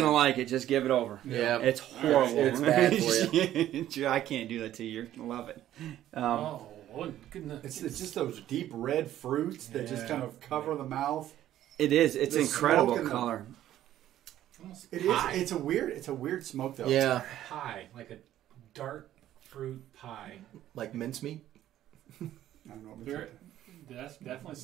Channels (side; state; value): left; quieter; 12.6 dB